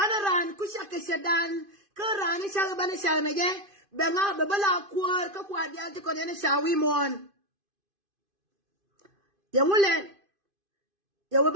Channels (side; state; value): left; late; 2.5 ms